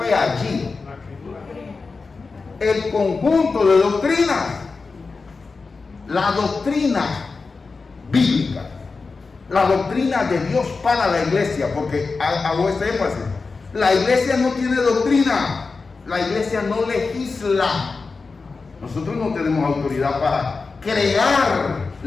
allí? El conjunto de doctrinas, la doctrina bíblica, la doctrina de Dios para la iglesia, porque hago este énfasis. La iglesia no tiene doctrina, la iglesia no legisla. Nosotros no tenemos autoridad para crear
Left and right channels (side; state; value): right; quieter; 4.3 dB